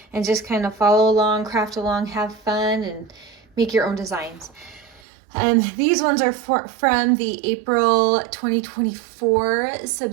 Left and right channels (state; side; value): drops out; left; at 5.0 s